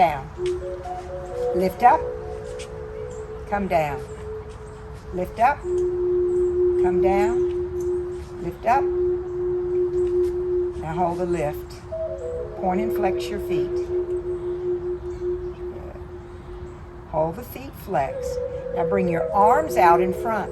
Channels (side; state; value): both; identical; correlation 1.00